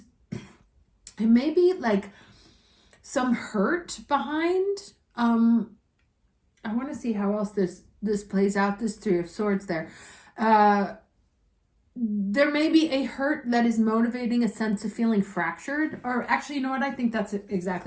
it may be like some hurt behind. I want to see how else this plays out, this 3 of Swords there. There may be a hurt that is motivating a sense of feeling fractured, or actually, you know what? I think that's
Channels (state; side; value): identical; both; correlation 1.00